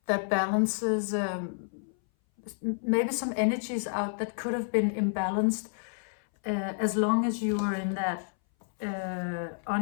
that balances maybe some energies out that could have been imbalanced, as long as you were in that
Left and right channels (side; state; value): right; silent; 58 dB below the other